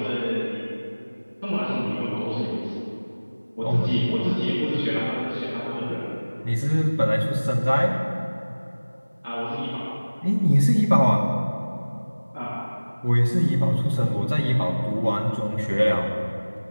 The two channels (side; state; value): both; inverted; correlation -1.00